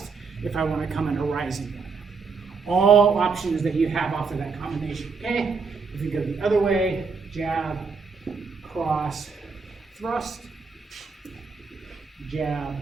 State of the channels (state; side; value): quieter; left; 5.0 dB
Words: If I want to come in a rising one. All options that you have off of that combination, okay? If you go the other way, jab, cross, thrust. Jab,